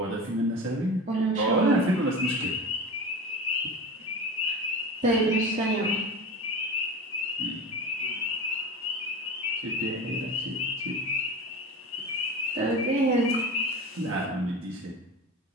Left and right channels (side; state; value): both; normal; correlation 0.29